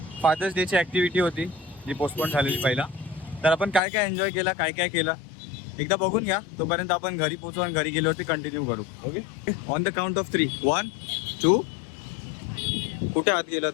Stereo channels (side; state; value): right; drops out; at 3.8 s